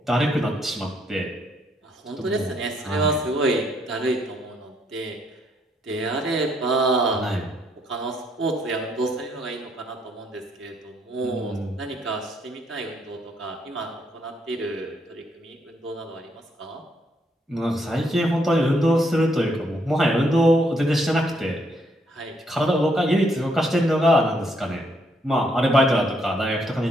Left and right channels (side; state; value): both; normal; correlation 0.72